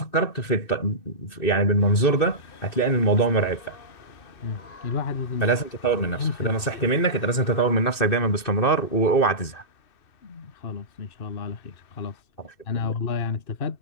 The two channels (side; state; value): right; late; 2.6 ms